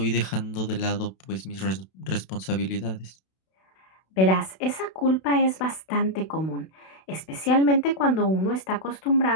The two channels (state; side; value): late; right; 32 ms